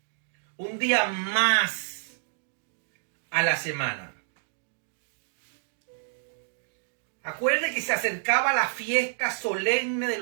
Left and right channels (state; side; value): silent; left; digital silence